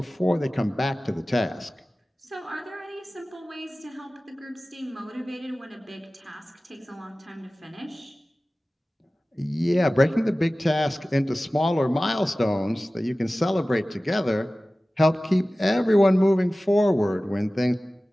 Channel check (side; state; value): both; normal; correlation 0.97